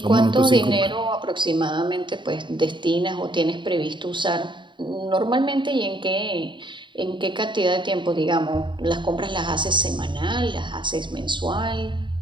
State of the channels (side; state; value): left; late; 0.23 ms